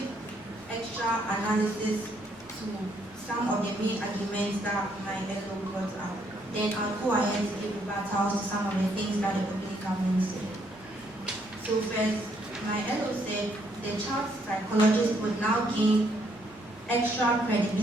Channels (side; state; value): left; noise; rumble, 27 dB below the sound